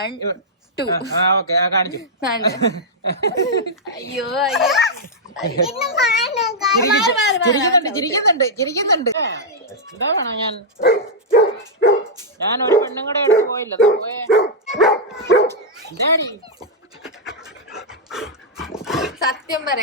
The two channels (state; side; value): normal; both; correlation -0.07